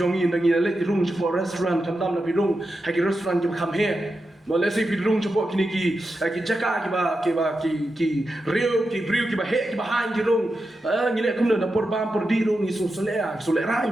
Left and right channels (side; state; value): both; normal; correlation 0.89